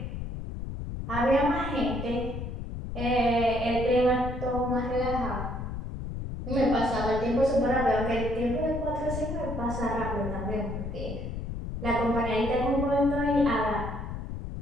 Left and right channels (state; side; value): noise; left; rumble, 6 dB below the sound